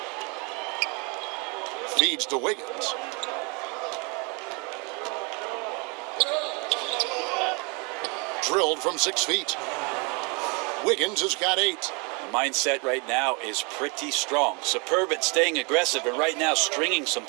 Feeds to Wiggins. Drilled from 6 feet. Wiggins has got 8. The mindset right now is pretty strong. Superb at staying aggressive and right now stringing some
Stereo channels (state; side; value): quieter; left; 31.5 dB